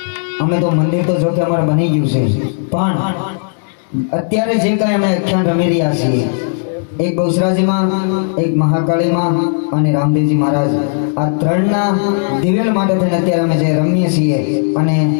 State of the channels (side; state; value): right; silent; digital silence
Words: અમે તો મંદિર તો જો કે અમારે બની ગયું છે, પણ અત્યારે જે કાંઈ અમે આખ્યાન રમી રહ્યા છીએ, એક બહુચરાજીમાં, એક મહાકાળીમાં અને રામદેવજી મહારાજ, આ ત્રણના દિવેલ માટે થઈને અત્યારે અમે જે રમીએ છીએ અને